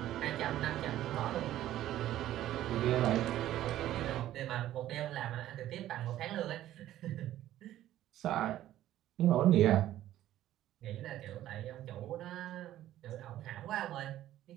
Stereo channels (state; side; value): quieter; left; 13.3 dB